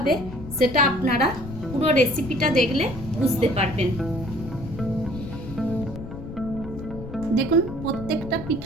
সেটা আপনারা পুরো রেসিপিটা দেখলে বুঝতে পারবেন। দেখুন, প্রত্যেকটা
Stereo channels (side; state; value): left; noise; rumble, 11 dB below the sound